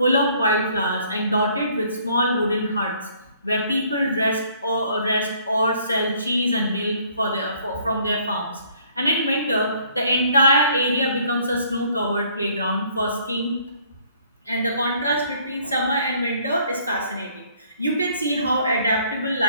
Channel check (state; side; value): inverted; both; correlation -0.61